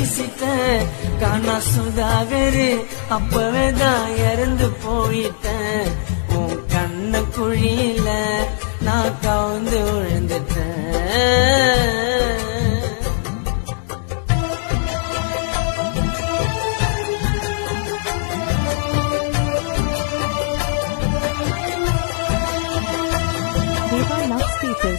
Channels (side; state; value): right; silent; digital silence